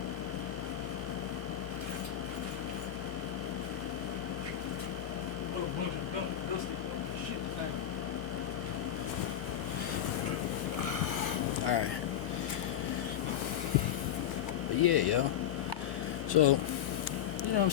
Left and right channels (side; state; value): right; quieter; 10.5 dB